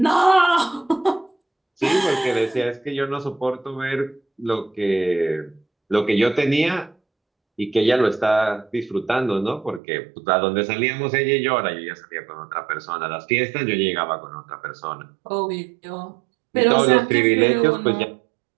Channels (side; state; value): left; drops out; at 9.8 s